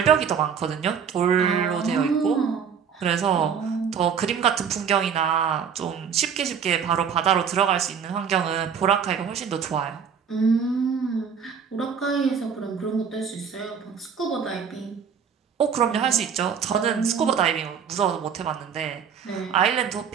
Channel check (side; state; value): left; quieter; 7.1 dB